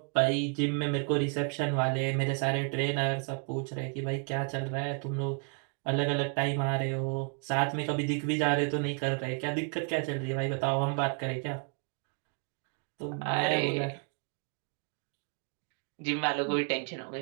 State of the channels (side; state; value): left; quieter; 38.3 dB